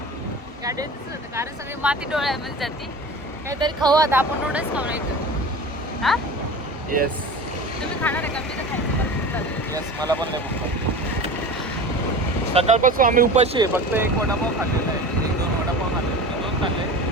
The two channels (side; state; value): both; normal; correlation 0.34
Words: गाडीवर दिसत होतं, कारण सगळी माती डोळ्यामध्ये जाते. काहीतरी खाऊ आता आपण, नूडल्स खाऊ नाही तर. हा येस. तुम्ही खाणार आहे का? मी तर खायचं. येस, मला पण नाही भूक. सकाळपासून आम्ही उपाशी आहे. फक्त 1 वडापाव खाल्लेला आहे, 1-2 वडापाव खाल्ले, 2 खाल्ले,